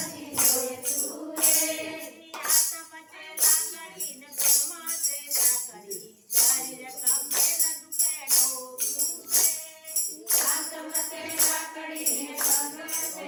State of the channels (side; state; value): both; identical; correlation 1.00